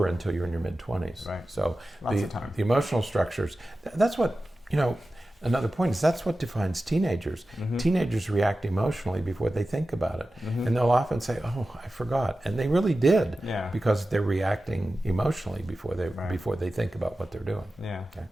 until you're in your mid-20s. Right. So Lots of time. the emotional structures, that's what, another point is that's what defines teenagers. Teenagers react emotionally before they think about it. And they'll often say, oh, I forgot. And they really did, because they're reacting emotionally before they think about what they're doing. Yeah, okay?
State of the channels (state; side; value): normal; both; correlation 0.94